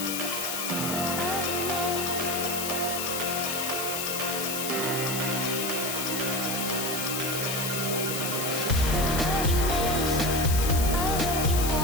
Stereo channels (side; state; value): left; noise; hiss, 3 dB below the sound